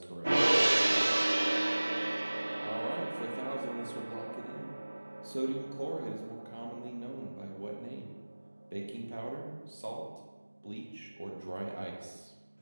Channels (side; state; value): both; inverted; correlation -1.00